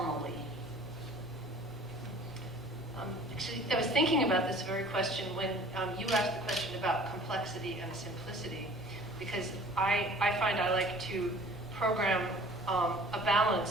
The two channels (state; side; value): normal; both; correlation 0.49